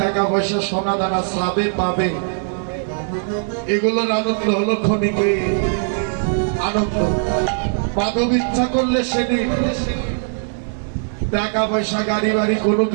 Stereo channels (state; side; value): silent; left; 57 dB below the other